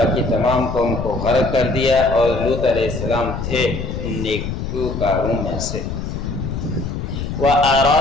تمام قوم کو غرق کر دیا، اور لوط علیہ السلام تھے ان نیکوکاروں میں سے۔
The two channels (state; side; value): noise; left; rumble, 5 dB below the sound